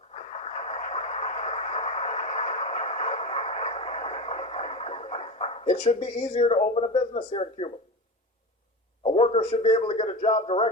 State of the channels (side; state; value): both; normal; correlation 0.25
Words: It should be easier to open a business here in Cuba. A worker should be able to get a job